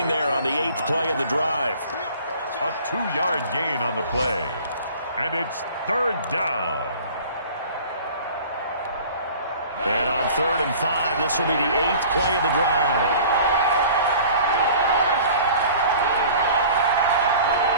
there on the 8th play of the drive. A 2-yard gain on the play. And it's 3rd down. And on 3rd and 5, this will be the 8th play of the drive.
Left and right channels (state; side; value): inverted; both; correlation -0.46